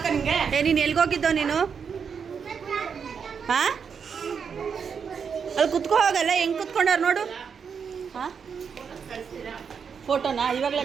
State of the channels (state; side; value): quieter; left; 6.5 dB